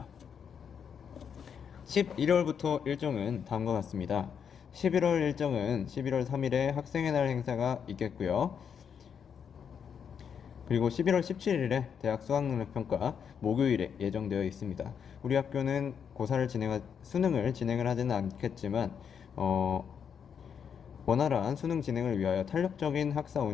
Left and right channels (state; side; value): quieter; right; 7.4 dB